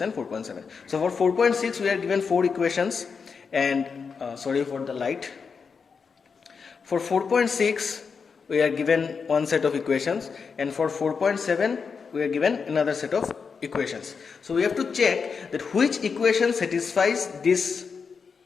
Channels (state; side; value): quieter; right; 5.6 dB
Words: and 4.7. So for 4.6 we are given 4 equations, and sorry for the light. For 4.6 we are given one set of equations, and for 4.7 we are given another set of equations. So we have to check that which equation satisfies this